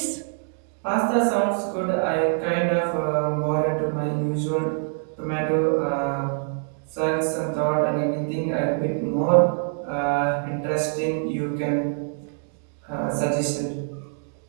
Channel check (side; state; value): left; silent; 61 dB below the other